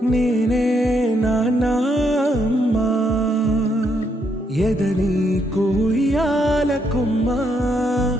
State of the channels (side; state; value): both; normal; correlation 0.76